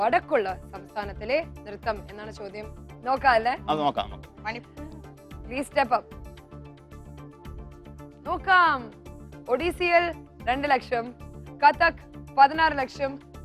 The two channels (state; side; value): identical; both; correlation 1.00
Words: സംസ്ഥാനത്തിലെ നൃത്തം എന്നാണ് ചോദ്യം. നോക്കാം അല്ലേ? അത് നോക്കാം. Please step up. നോക്കാം. ഒഡീസിയിൽ 2 ലക്ഷം, കഥക് 16 ലക്ഷം,